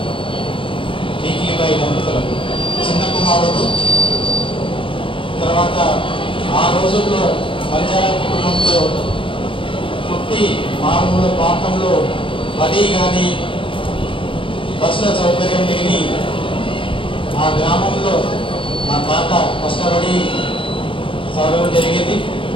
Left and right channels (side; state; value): right; late; 0.25 ms